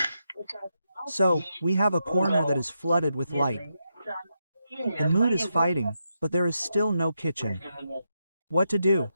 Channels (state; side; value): inverted; both; correlation -0.84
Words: So, we have a corner that is flooded with light. The mood is fighting, but there is still no kitchen. What to do?